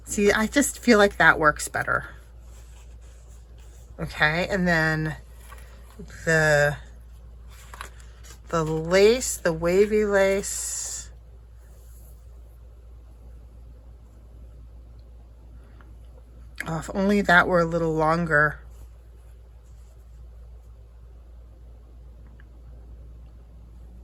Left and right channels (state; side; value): identical; both; correlation 1.00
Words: See, I just feel like that works better. Okay, and then the lace, the wavy lace. Oh, if only that were a little longer.